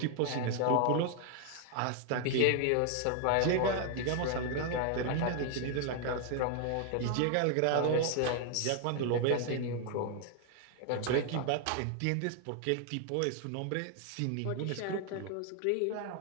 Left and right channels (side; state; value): both; different; correlation 0.00